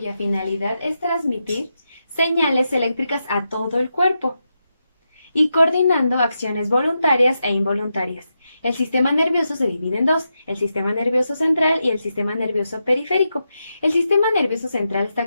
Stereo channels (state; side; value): inverted; both; correlation -0.86